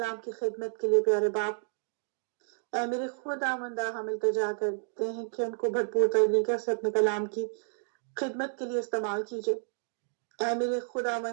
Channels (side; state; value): left; silent; digital silence